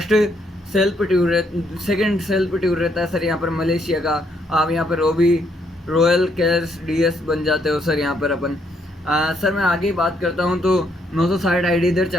सेकंड सेल्फ टूर रहता है सर यहाँ पर मलेशिया का। आप यहाँ पर रॉयल कैश DS बन जाते हो सर यहाँ पर अपन। सर मैं आगे बात करता हूँ तो 960 आईडी इधर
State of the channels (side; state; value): both; normal; correlation 0.73